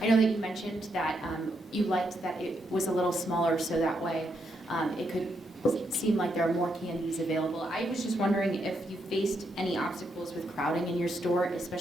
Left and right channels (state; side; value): normal; both; correlation 0.79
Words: know that you mentioned that you liked that it was a little smaller, so that way it could seem like there are more candies available. I was just wondering if you faced any obstacles with crowding in your store,